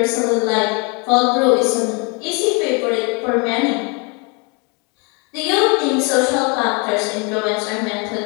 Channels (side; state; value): right; quieter; 32.2 dB